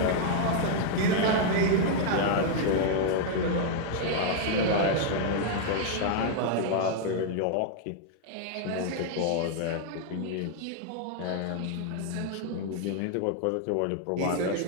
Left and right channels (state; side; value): different; both; correlation 0.00